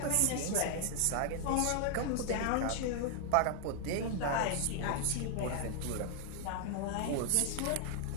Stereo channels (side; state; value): both; different; correlation 0.00